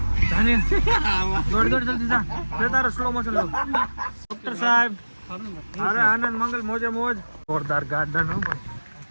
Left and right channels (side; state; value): both; inverted; correlation -1.00